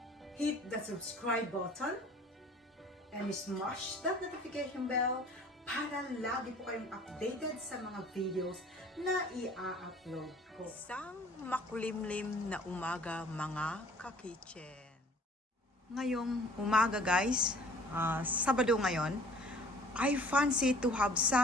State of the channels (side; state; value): both; normal; correlation 0.51